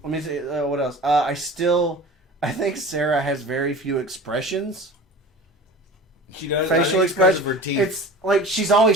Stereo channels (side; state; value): both; normal; correlation 0.37